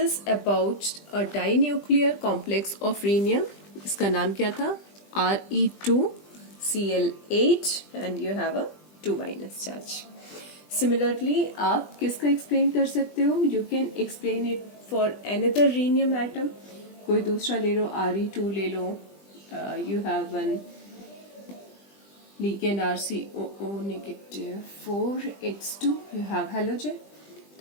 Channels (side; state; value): right; late; 20 ms